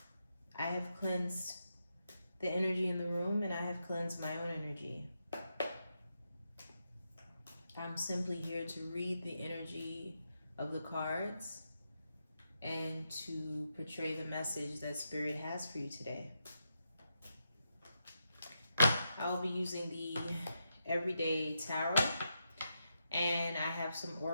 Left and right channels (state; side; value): inverted; both; correlation -0.84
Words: I have cleansed the energy in the room and I have cleansed my own energy. I'm simply here to read the energy of the cards and to portray the message that Spirit has for you today. I'll be using the Everyday Tarot, and I have some